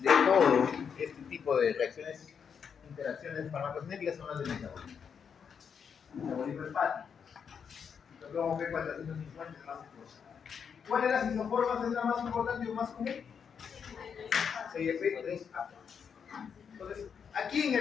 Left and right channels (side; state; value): right; quieter; 6.9 dB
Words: todo este tipo de reacciones, interacciones farmacocinéticas son las del metabolismo. Metabolismo hepático. Luego que 450 es más importante. ¿Cuál de las isoformas es la más importante o más común? 6F3A. Entonces, aquí en